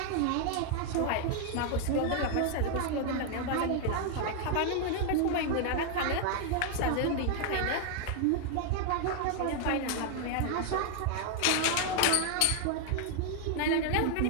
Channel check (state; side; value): different; both; correlation 0.00